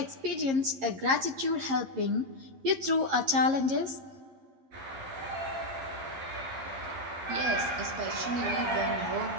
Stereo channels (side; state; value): left; late; 11 ms